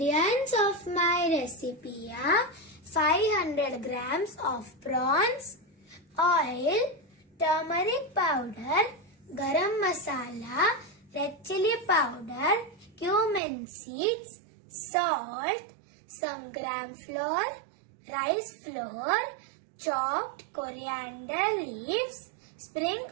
of my recipe are 500 grams of prawns, oil, turmeric powder, garam masala, red chili powder, cumin seeds, salt, some gram flour, rice flour, chopped coriander leaves, spring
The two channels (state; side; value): drops out; left; at 13.4 s